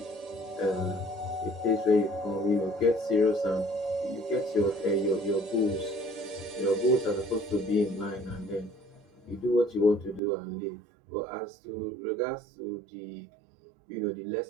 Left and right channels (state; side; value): drops out; left; at 10.2 s